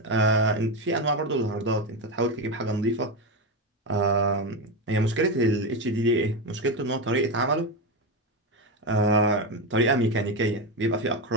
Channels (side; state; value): both; normal; correlation 0.12